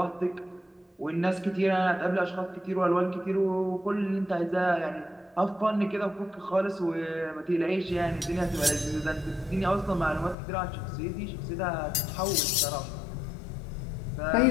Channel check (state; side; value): drops out; right; at 10.4 s